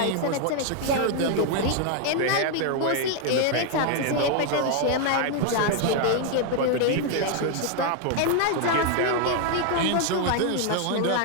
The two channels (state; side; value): different; both; correlation 0.00